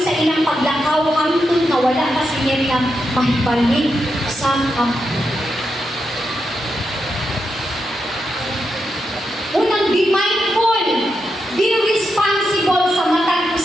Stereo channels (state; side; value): normal; both; correlation 0.85